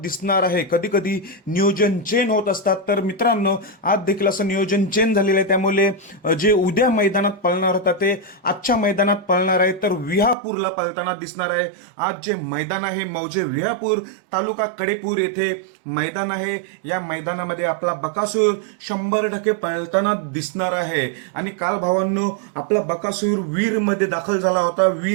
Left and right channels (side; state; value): left; drops out; at 10.4 s